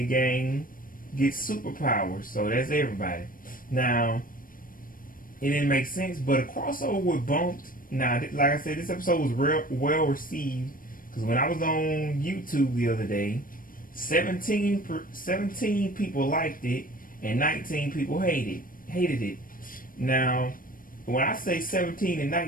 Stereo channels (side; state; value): right; late; 0.40 ms